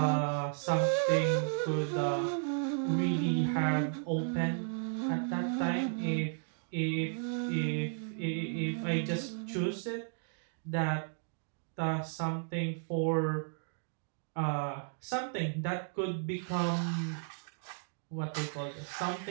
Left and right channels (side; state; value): left; silent; digital silence